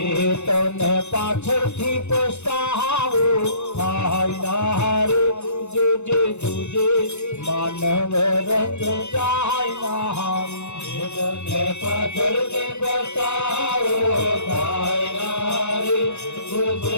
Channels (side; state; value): right; late; 0.82 ms